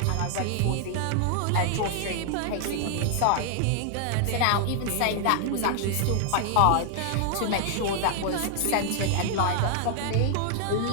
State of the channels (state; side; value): different; both; correlation 0.00